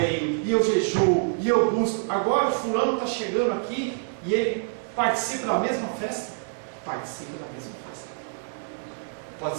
e eu jejuo, e eu busco. Agora o fulano está chegando aqui e ele participa da mesma festa? Participa da mesma festa. Pode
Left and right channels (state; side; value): silent; left; 61 dB below the other